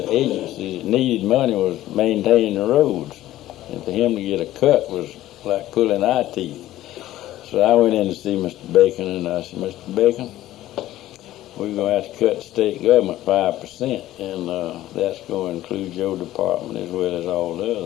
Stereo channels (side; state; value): right; quieter; 14.5 dB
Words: agencies that needed money was maintaining the roads. And for him to get a cut was like pulling eye teeth. So I went in to see Mr. Bacon, and I said, Mr. Bacon, we're going to have to cut the state government 5%, and that's going to include your department as well as all the